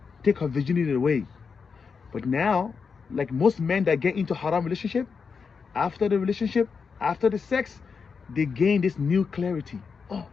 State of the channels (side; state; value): right; quieter; 5.5 dB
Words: take her virginity away. But now, like most men that get into haram relationship, after the sex, they gain this new clarity. Oh